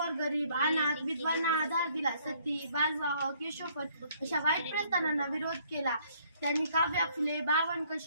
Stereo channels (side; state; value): both; inverted; correlation -0.63